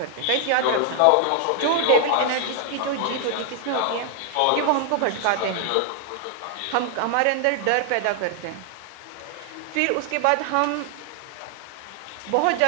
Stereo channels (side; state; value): both; different; correlation 0.00